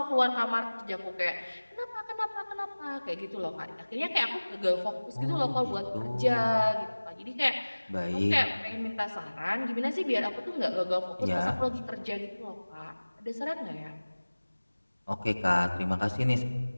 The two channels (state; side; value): inverted; both; correlation -1.00